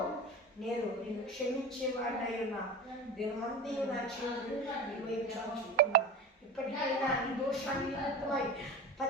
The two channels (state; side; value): normal; both; correlation 0.29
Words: నేను నిన్ను క్షమించేవాడినై ఉన్నా. దినమంది నా చేతులు నీ వైపు చాచుతున్నా. ఇప్పటికైనా నీ దోషాన్ని నిమిత్తమై